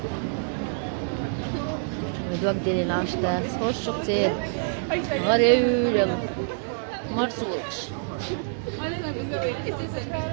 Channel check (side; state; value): left; silent; digital silence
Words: ويدوك ديلي لانشتا خوش كتير غريب يلا مرسولش